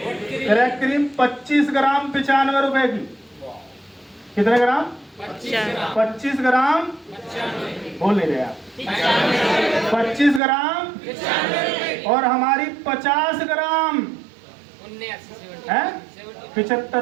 क्रीम 25 ग्राम 95 रुपए की। कितने ग्राम? 25 ग्राम। बोल नहीं रहे आप। 25 ग्राम और हमारी 50 ग्राम है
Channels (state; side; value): drops out; left; at 10.4 s